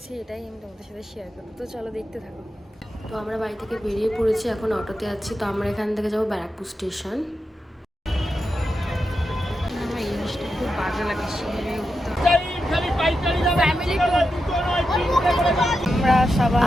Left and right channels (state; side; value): normal; both; correlation 0.88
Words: এটাই আমি তোমাদের সাথে শেয়ার করবো। তো চলো দেখতে থাকো। তো আমরা বাড়ি থেকে বেরিয়ে পড়েছি, এখন অটোতে যাচ্ছি। তো আমরা এখান থেকে যাবো ব্যারাকপুর স্টেশন। আমার এই জিনিসটা খুব বাজে লাগে,